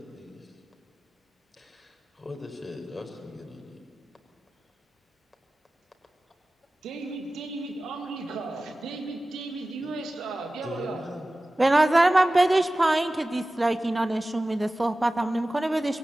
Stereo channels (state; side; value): normal; both; correlation 0.96